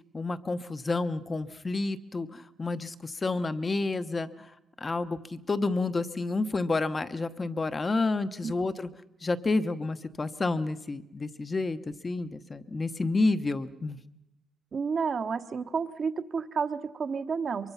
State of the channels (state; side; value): normal; both; correlation 0.90